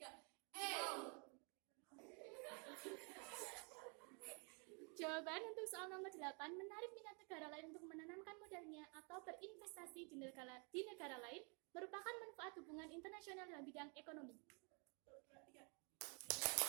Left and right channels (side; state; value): left; quieter; 35.0 dB